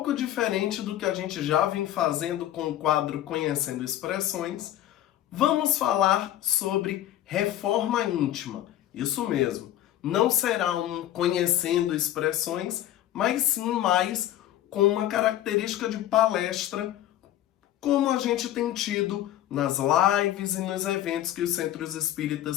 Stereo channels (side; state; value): right; quieter; 12.9 dB